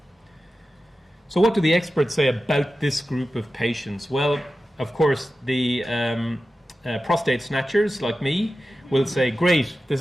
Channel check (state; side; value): normal; both; correlation 0.93